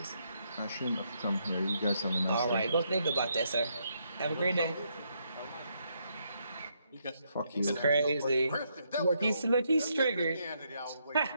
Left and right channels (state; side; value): inverted; both; correlation -0.76